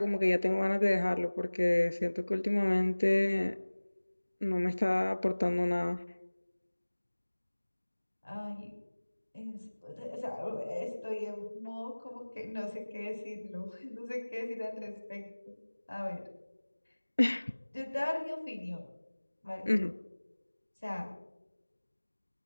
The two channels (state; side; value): inverted; both; correlation -1.00